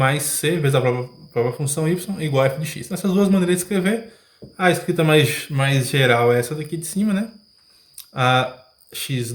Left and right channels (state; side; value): identical; both; correlation 1.00